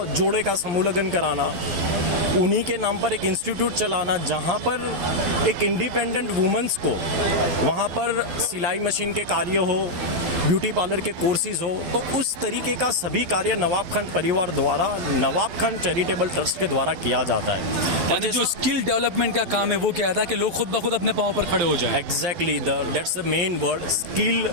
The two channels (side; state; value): left; late; 11 ms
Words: जोड़े का समूह लगन कराना, उन्हीं के नाम पर एक इंस्टीट्यूट चलाना जहाँ पर एक इंडिपेंडेंट वुमेन्स को वहाँ पर सिलाई मशीन के कार्य हो, ब्यूटी पार्लर के कोर्सेज हो, तो उस तरीके का सभी कार्य नवाब खान परिवार द्वारा नवाब खान चैरिटेबल ट्रस्ट के द्वारा किया जाता है। यानी जो स्किल डेवलपमेंट का काम है वो क्या था कि लोग खुद ब खुद अपने पाँव पर खड़े हो जाएं। Exactly, that's the main word, skill